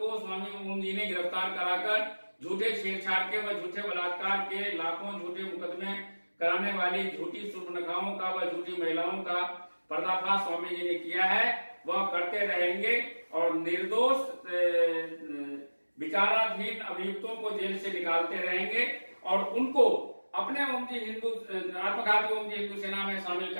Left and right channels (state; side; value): inverted; both; correlation -1.00